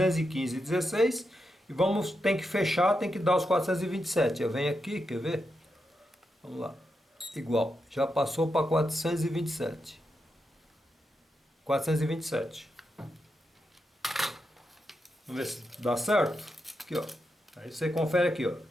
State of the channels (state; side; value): normal; both; correlation 0.86